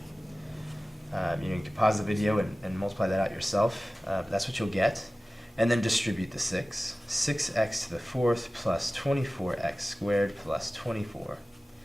You can pause the video and multiply that out yourself, but that's what you'll get. And then distribute the 6. 6x to the 4th plus 24x squared plus 24.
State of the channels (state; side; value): normal; both; correlation 0.97